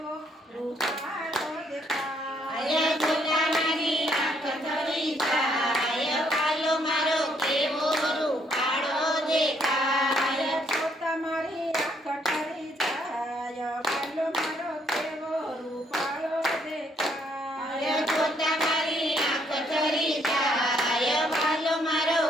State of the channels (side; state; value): both; normal; correlation 0.70